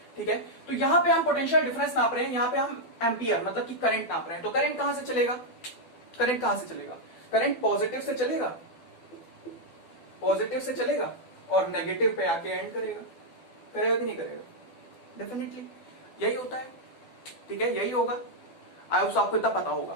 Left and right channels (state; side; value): late; right; 12 ms